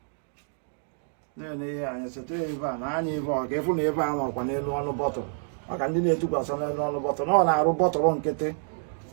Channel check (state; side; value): silent; left; digital silence